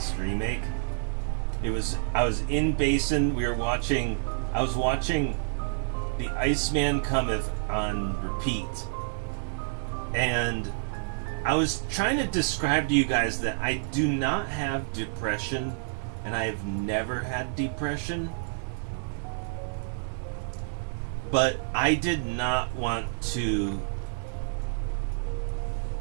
remake. I was in Basin, I was watching The Iceman Cometh on repeat, and I was trying to describe to you guys that I do not have depression, and I have never had depression, but I did not want to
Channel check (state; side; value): silent; left; digital silence